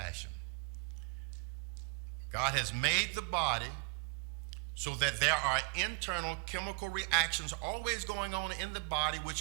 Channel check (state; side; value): quieter; left; 31.9 dB